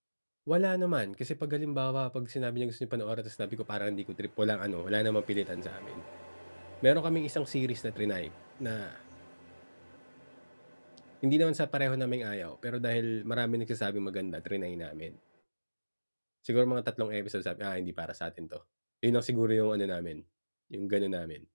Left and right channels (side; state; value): both; inverted; correlation -1.00